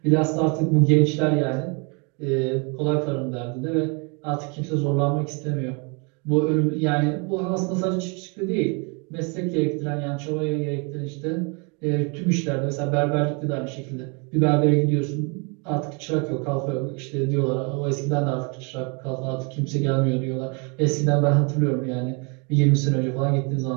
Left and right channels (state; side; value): quieter; left; 33.2 dB